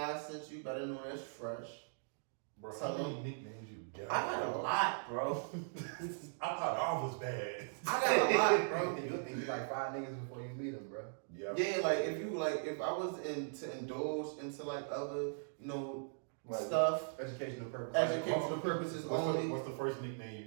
sent you. Better know that's fresh. Bro, Tell how many him. nicknames you got? I got a lot, bro. I thought all was bad. I got a lot, bro. You think you like 5 niggas before you meet them, bro. Yeah. Yeah, if I was to indulge into other, Like, stuff, Educational purposes. educational purposes only. What's the first nickname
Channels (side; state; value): left; silent; digital silence